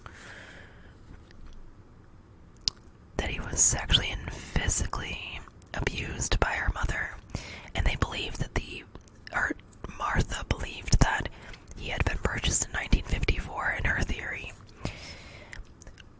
That he was sexually and physically abused by her mother, and they believed that Martha believed that he had been purchased in 1954 in her theory.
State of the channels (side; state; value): both; identical; correlation 1.00